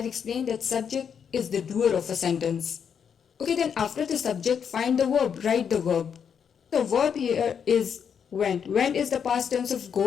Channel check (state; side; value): quieter; right; 7.4 dB